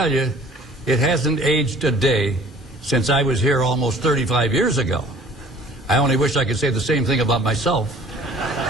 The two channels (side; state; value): both; normal; correlation 0.50